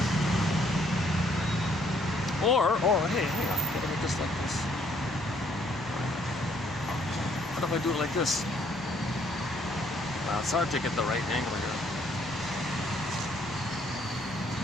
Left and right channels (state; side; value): noise; left; rumble, 22 dB below the sound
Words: Or, hey, hang on. What if I just like this? What if I do it like this? Well, it's hard to get the right angle here.